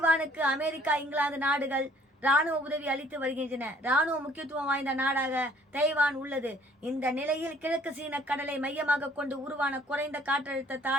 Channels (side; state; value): both; normal; correlation 0.59